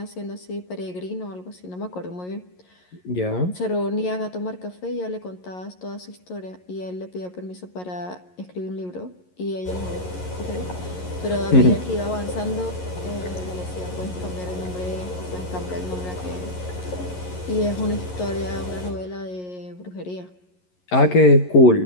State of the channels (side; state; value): right; late; 11 ms